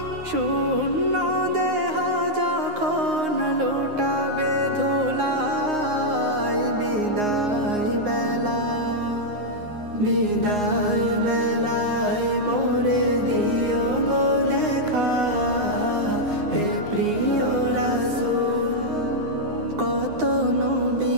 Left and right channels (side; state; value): left; late; 9.6 ms